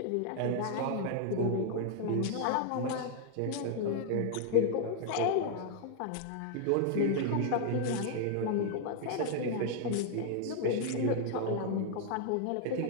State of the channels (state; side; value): different; both; correlation 0.00